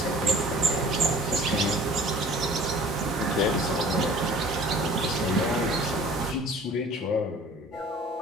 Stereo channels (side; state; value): both; normal; correlation 0.47